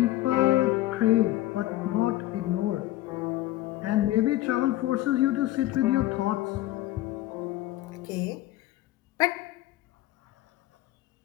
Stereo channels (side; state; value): right; quieter; 15.8 dB